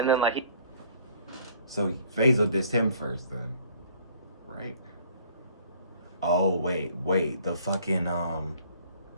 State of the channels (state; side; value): inverted; both; correlation -0.56